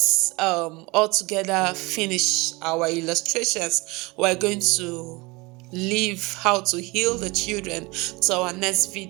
altogether finish our illustrations, we're going to leave how to heal the children to our next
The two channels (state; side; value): quieter; left; 24.7 dB